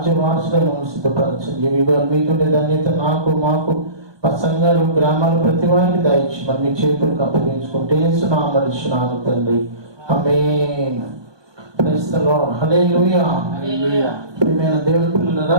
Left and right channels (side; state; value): left; late; 1.2 ms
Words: వారసులను సిద్ధపరచండి. మీకుండే ధన్యత నాకు, మాకు, మా సంఘాలు, గ్రామాలు ప్రతి వారికి దయచి మరి మీ చేతులకు అప్పగించుకుంటే సునామరిస్తున్నాను తండ్రి. Amen. Praise the lord. Hallelujah. ప్రియమైన దేవుని